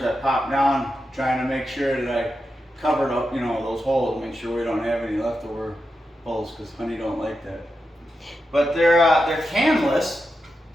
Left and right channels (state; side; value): normal; both; correlation 0.88